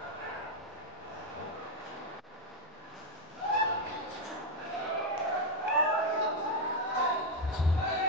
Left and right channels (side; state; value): both; normal; correlation 0.02